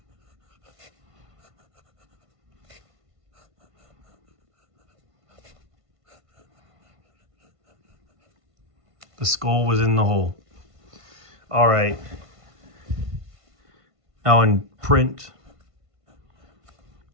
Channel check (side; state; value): left; late; 1.5 ms